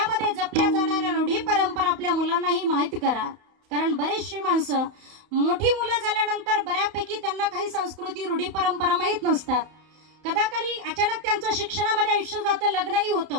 जपल्या जाणाऱ्या रूढी परंपरा आपल्या मुलांनाही माहित करा. कारण बरेचशी माणसं मोठी मुलं झाल्यानंतर बऱ्यापैकी त्यांना काही संस्कृती रूढी परंपरा माहीत नसतात. कदाकाळी अचानक त्यांचं शिक्षणामध्ये आयुष्य जातं, लग्नही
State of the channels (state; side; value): late; left; 31 ms